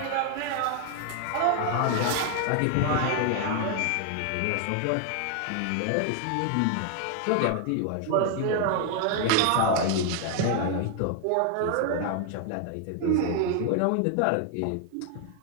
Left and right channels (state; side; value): different; both; correlation 0.00